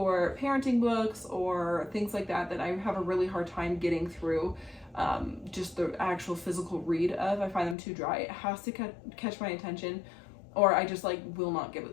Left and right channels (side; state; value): right; drops out; at 7.8 s